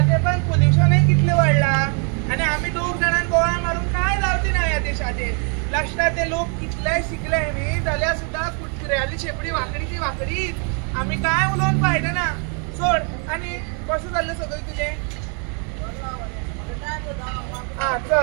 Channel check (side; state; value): left; quieter; 39.1 dB